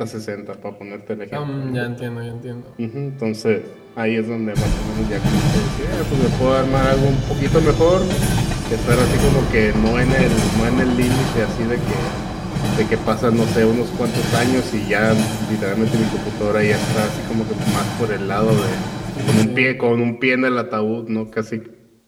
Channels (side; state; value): both; identical; correlation 1.00